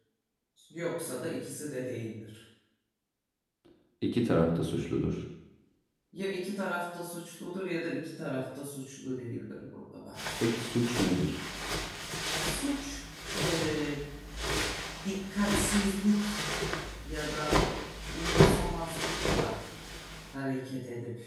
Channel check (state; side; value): identical; both; correlation 1.00